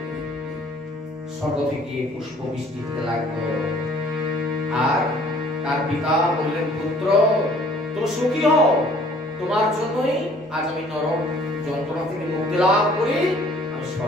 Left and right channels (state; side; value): normal; both; correlation 0.56